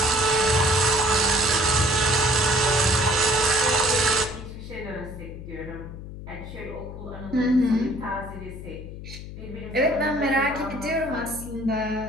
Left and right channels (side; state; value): left; noise; hum, 12 dB below the sound